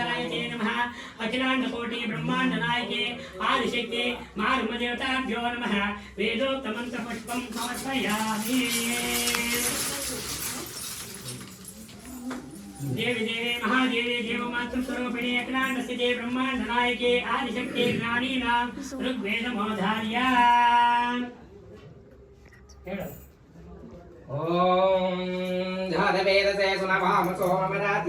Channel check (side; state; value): both; identical; correlation 1.00